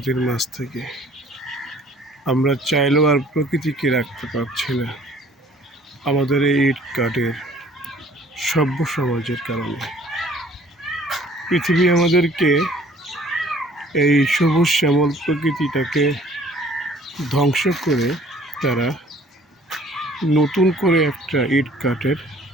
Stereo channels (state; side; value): normal; both; correlation 0.55